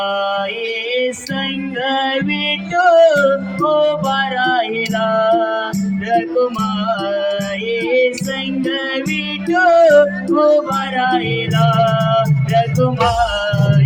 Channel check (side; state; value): both; identical; correlation 1.00